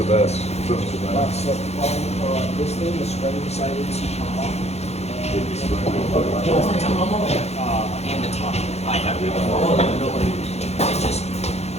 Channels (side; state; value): right; late; 0.31 ms